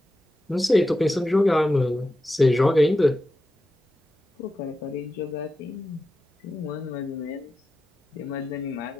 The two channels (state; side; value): normal; both; correlation 0.91